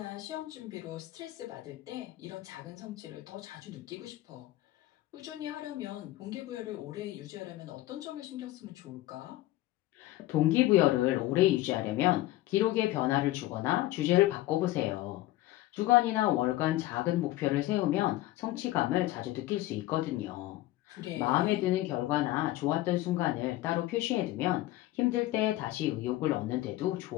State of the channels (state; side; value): quieter; right; 16.4 dB